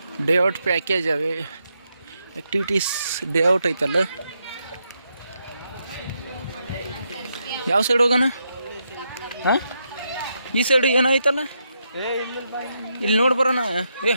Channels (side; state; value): both; inverted; correlation -0.81